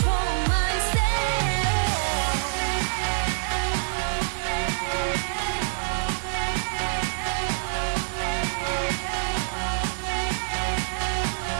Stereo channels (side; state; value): left; silent; 61 dB below the other